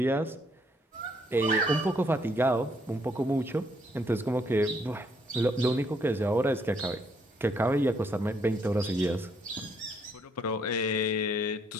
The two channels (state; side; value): normal; both; correlation 0.70